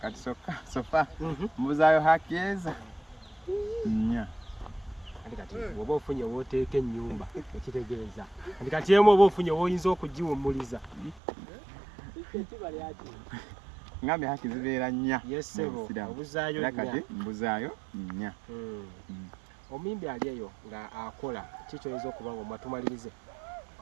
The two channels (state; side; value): drops out; left; at 11.2 s